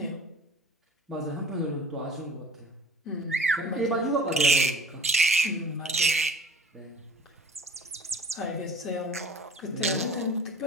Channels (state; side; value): normal; both; correlation 0.47